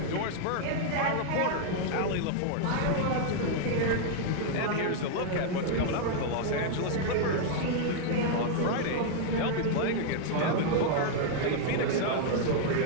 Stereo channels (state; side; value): different; both; correlation 0.00